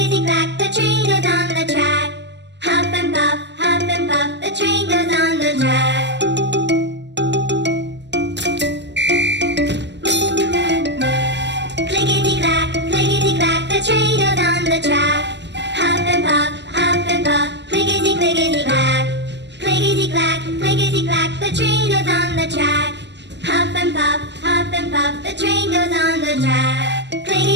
train goes on the track. Huff and puff, the train goes on the track. Clickety clack, the train goes on the track. Huff and puff, clickety clickety clack. Clickety clack, the train goes on the track. Huff and puff, the train goes on the track.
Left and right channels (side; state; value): left; late; 0.51 ms